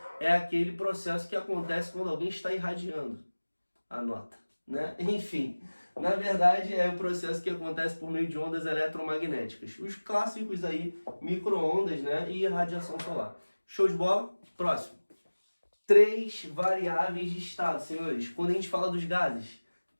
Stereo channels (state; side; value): inverted; both; correlation -1.00